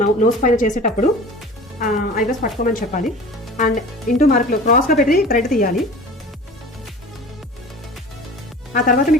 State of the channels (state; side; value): normal; both; correlation 0.39